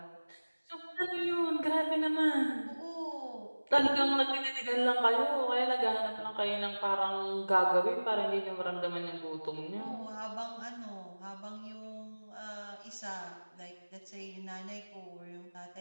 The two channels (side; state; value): both; inverted; correlation -1.00